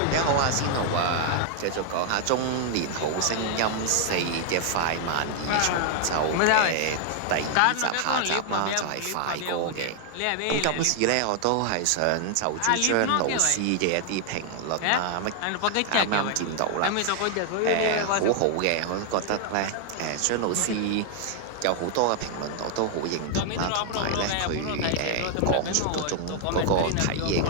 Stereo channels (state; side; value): different; both; correlation 0.00